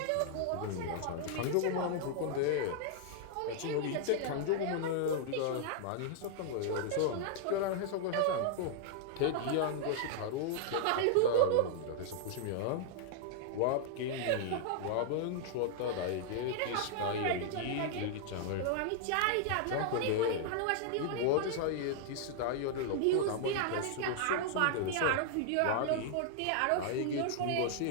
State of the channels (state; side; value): different; both; correlation -0.01